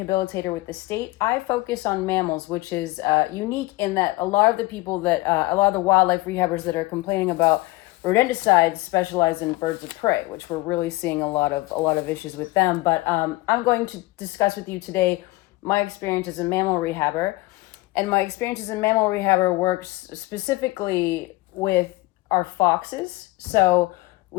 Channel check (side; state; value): right; quieter; 20.4 dB